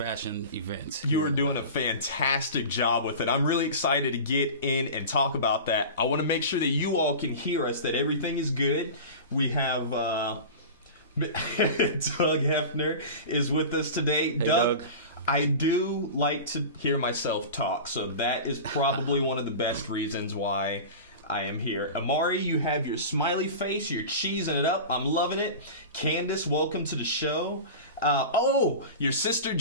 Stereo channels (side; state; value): both; inverted; correlation -0.32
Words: events. You are doing a fantastic job with it. I'm really excited to get in and talk about that. I want to make sure that you all can hear us, that everything is good. We have Doug Hefner is with us today. Hey, Doug. I do like to hear myself talk, so that is probably one of the best reasons why I am here. Amari, you have your smiley face. You're cheesing it up. I'm loving it. Candace, welcome to the show. Your sister